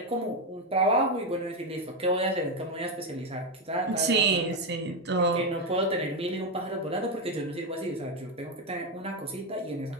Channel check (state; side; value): normal; both; correlation 0.07